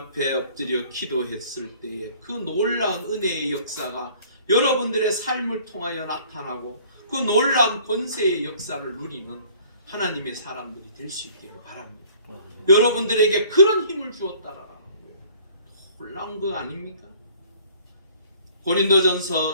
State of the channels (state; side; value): inverted; both; correlation -0.55